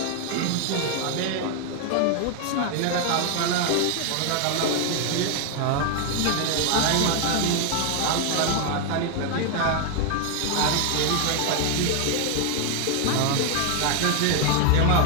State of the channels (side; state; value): both; different; correlation 0.00